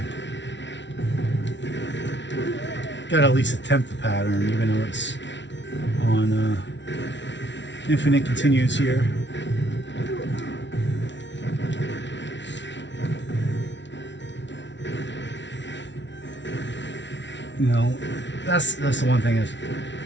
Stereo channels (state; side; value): late; right; 0.52 ms